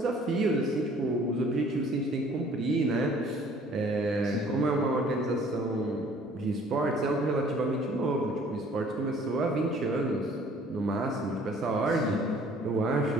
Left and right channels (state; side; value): normal; both; correlation 0.55